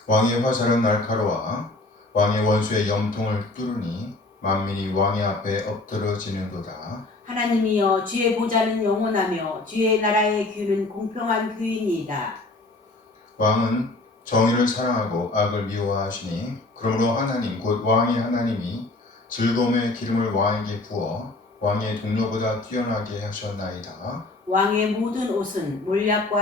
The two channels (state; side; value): quieter; right; 3.0 dB